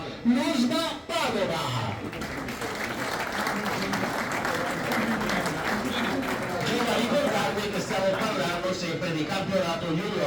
l'USBA Padova. Devo ricordarvi che stiamo parlando sempre di campionato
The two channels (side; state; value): both; identical; correlation 1.00